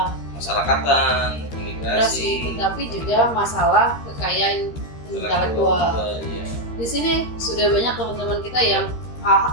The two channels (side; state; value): right; late; 13 ms